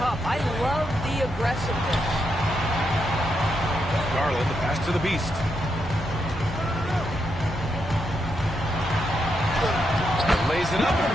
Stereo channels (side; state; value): both; normal; correlation 0.82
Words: cup. I love the aggressiveness. Garland, the pass to the beast. Lays it up and